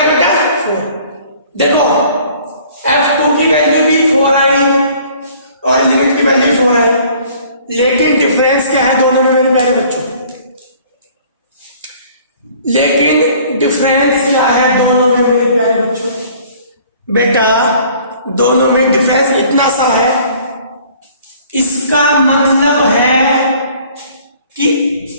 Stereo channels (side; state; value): both; inverted; correlation -0.54